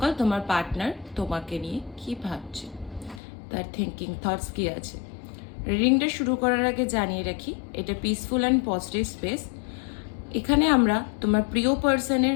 তোমার পার্টনার তোমাকে নিয়ে কি ভাবছে, তার থিঙ্কিং থটস কি আছে। রিডিংটা শুরু করার আগে জানিয়ে রাখি, এটা পিসফুল অ্যান্ড পজিটিভ স্পেস। এখানে আমরা তোমার প্রিয় পার্সনের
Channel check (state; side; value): drops out; right; at 3.2 s